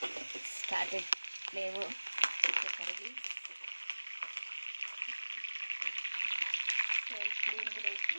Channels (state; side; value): inverted; both; correlation -1.00